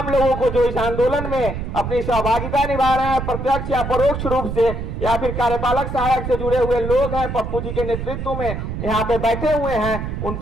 लोगों को जो इस आंदोलन में अपनी सहभागिता निभा रहे हैं, प्रत्यक्ष या परोक्ष रूप से, या फिर कार्यपालक सहायक से जुड़े हुए लोग हैं, पप्पू जी के नेतृत्व में यहाँ पे बैठे हुए हैं, उन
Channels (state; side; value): noise; right; rumble, 5 dB below the sound